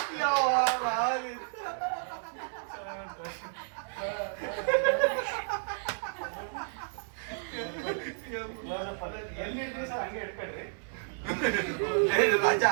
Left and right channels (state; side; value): silent; left; digital silence